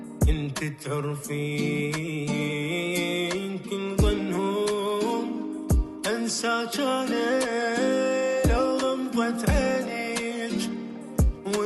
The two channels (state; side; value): identical; both; correlation 1.00